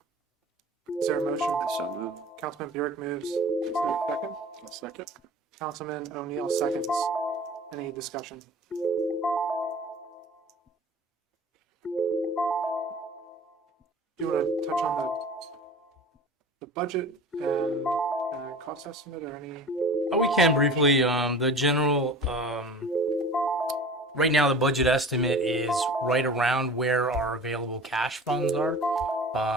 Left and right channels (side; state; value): both; normal; correlation 0.40